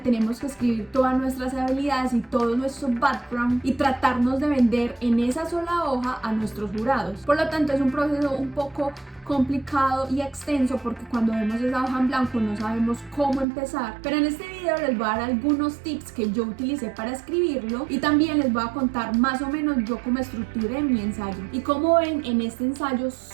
que escribir todas nuestras habilidades y todo nuestro background y tratarnos de vender en esa sola hoja a nuestros jurados. Por lo tanto, es un proceso un poco complicado y extenso porque cuando vemos esa hoja en blanco no sabemos cómo empezar, pero en este video les voy a dar algunos tips que yo utilicé para escribirlo y también les voy a contar más o menos yo cómo estructuré mi ensayo. Y como ven, en este ensayo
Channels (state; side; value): drops out; left; at 13.5 s